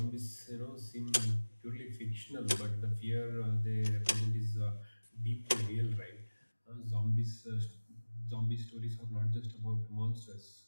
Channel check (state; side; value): inverted; both; correlation -1.00